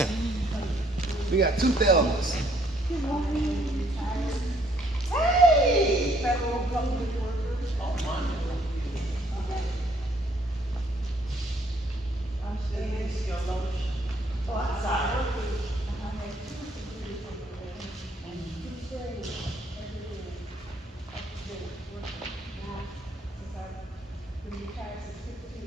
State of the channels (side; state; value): both; normal; correlation 0.66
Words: We got two Thelmas. Hey, federal government workers. I'm still your lotion. Oh, I'm sorry.